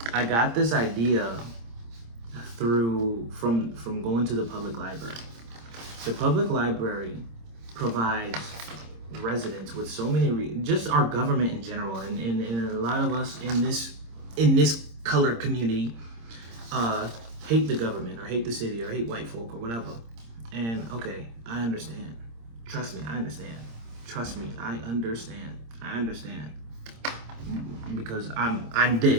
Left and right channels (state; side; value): late; left; 26 ms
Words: I got this idea from going to the public library. The public library provides residents with so many just our government in general, and a lot of us in this colored community hate the government or hate the city or hate white folk or whatever. And okay, I understand. Trust me, I understand. Trust me, I understand. I understand because I'm